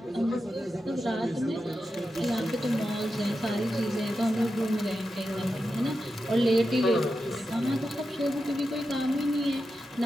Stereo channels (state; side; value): normal; both; correlation 0.90